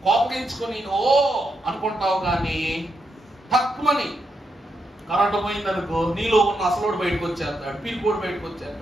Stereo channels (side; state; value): both; normal; correlation 0.82